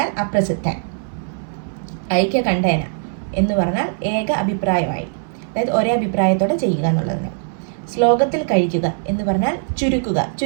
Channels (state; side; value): silent; left; 59 dB below the other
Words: അപ്രസിദ്ധൻ, ഐക്യകണ്ഠേന എന്ന് പറഞ്ഞാൽ ഏക അഭിപ്രായമായി, അതായത് ഒരേ അഭിപ്രായത്തോടെ ചെയ്യുക എന്നുള്ളതിന്, ശ്ലോകത്തിൽ കഴിക്കുക എന്ന് പറഞ്ഞാൽ ചുരുക്കുക,